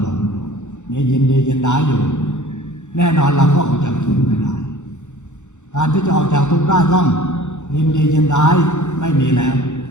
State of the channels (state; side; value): late; right; 0.84 ms